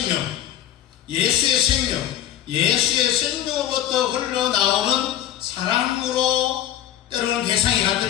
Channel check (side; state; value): right; quieter; 11.9 dB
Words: 예수의 생명, 예수의 생명으로부터 흘러나오는 사랑으로 때로는 대상이